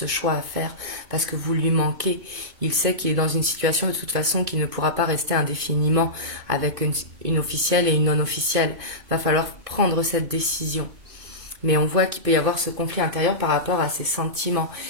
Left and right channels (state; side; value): late; left; 2.5 ms